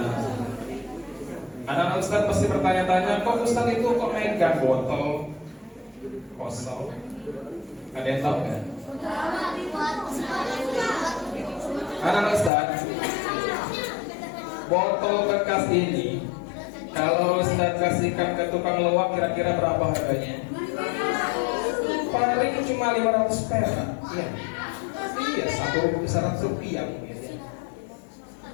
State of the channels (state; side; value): drops out; right; at 12.5 s